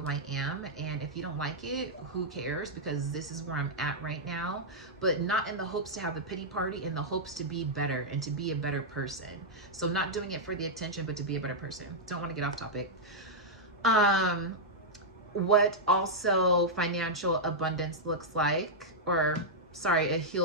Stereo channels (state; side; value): normal; both; correlation -0.07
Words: I am. And if you don't like it, who cares? Because this is where I'm at right now. But not in the hopes to have a pity party, in the hopes to be better and to be a better person. So not doing it for the attention, but to be a better person. Don't want to get off topic. What also financial abundance looks like, or sorry, a